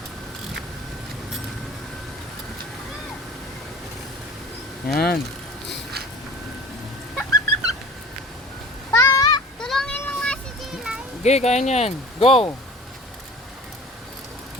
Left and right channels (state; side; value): normal; both; correlation 0.43